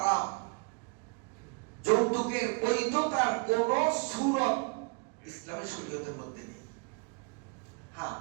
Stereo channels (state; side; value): quieter; left; 32.3 dB